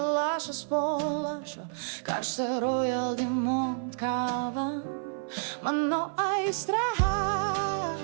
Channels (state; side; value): silent; left; 55 dB below the other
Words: po lašo, karštą Royal Dimont kava, mano aistra.